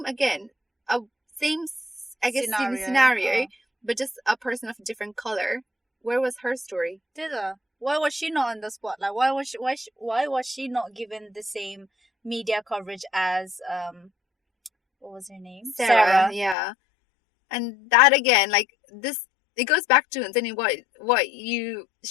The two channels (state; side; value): drops out; right; at 16.6 s